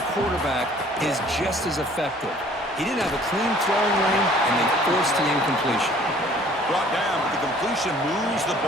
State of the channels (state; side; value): normal; both; correlation 0.54